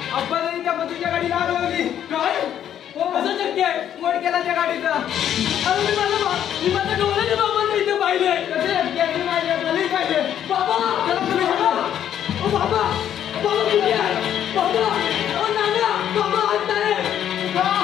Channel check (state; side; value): quieter; right; 10.2 dB